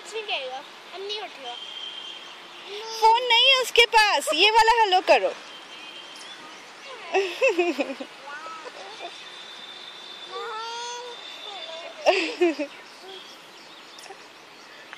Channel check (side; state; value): both; identical; correlation 1.00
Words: नहीं कहेगा, अब नहीं उठेगा। फोन नहीं है उसके पास, ये वाला हेलो करो।